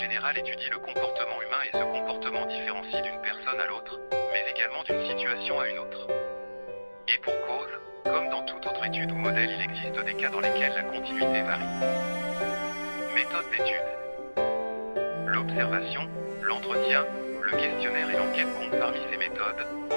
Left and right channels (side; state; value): both; inverted; correlation -1.00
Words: générale étudie le comportement humain et ce comportement différencie d'une personne à l'autre, mais également d'une situation à une autre. Et pour cause, comme dans toute autre étude ou modèle, il existe des cas dans lesquels la continuité varie. Méthode d'étude. L'observation, l'entretien, le questionnaire et l'enquête comptent parmi ces méthodes,